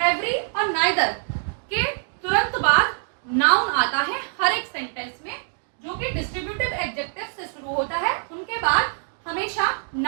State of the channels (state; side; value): silent; left; digital silence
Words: एवरी और नाइदर के तुरंत बाद नाउन आता है हर एक सेंटेंस में, जो कि डिस्ट्रीब्यूटिव एडजेक्टिव से शुरू होता है, उनके बाद हमेशा